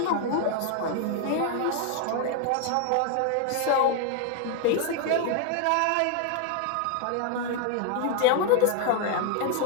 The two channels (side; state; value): both; different; correlation 0.00